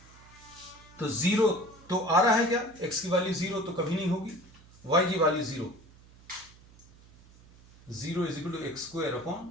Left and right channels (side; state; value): right; noise; hum, 24 dB below the sound